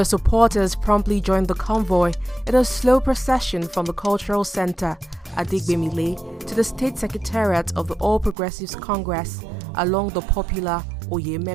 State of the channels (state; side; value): drops out; left; at 8.3 s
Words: supporters promptly joined the convoy in a slow procession from the cultural center Adegbemile to the state secretariat of the All Progressives Congress along the popular